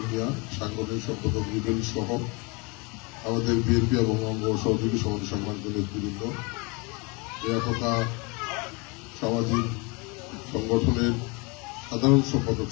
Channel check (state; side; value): quieter; right; 29.0 dB